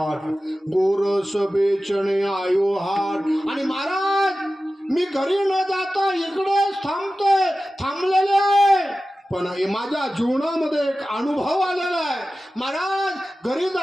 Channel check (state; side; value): normal; both; correlation 0.95